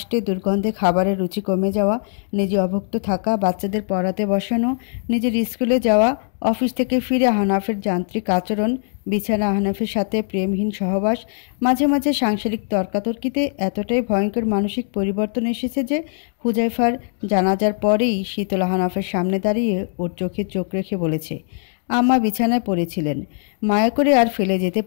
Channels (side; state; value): right; silent; digital silence